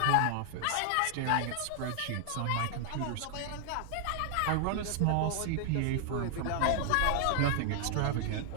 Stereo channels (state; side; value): different; both; correlation 0.00